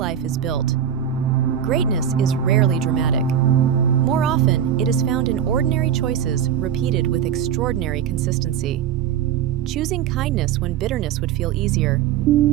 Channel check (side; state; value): left; quieter; 9.2 dB